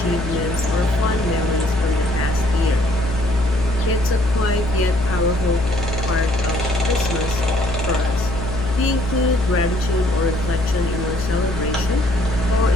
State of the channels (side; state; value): left; noise; hum, 6 dB below the sound